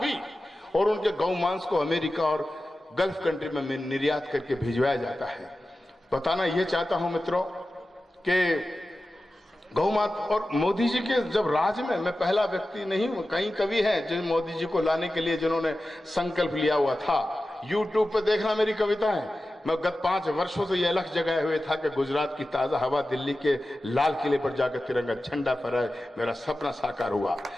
और उनके गौ मांस को अमेरिका और गल्फ कंट्री में निर्यात करके भिजवाया जाता है। बताना यह चाहता हूं मित्रों कि गौ माता और मोदी जी के जब राज में, मैं पहला व्यक्ति नहीं हूं, कई कवि हैं जिन मोदी जी को लाने के लिए जिन्होंने संकल्प लिया हुआ था। YouTube पे देखना मेरी कविताएं। मैं गत 5 वर्षों से यह लक्ष्य जगाए हुए था कि गुजरात की ताजा हवा दिल्ली के लाल किले पर जाकर तिरंगा झंडा फहराए, मेरा सपना साकार हुआ।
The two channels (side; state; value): both; normal; correlation 0.94